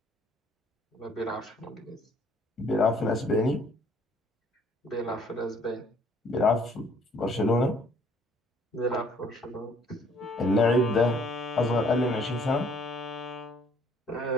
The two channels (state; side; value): normal; both; correlation 0.61